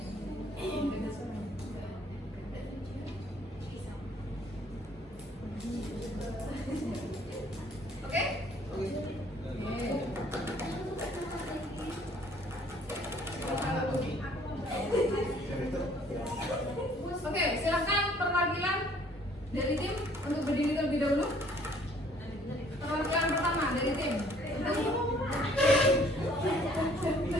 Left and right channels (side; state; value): both; normal; correlation 0.59